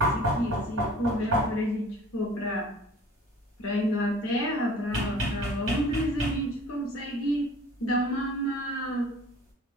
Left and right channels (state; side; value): normal; both; correlation 0.48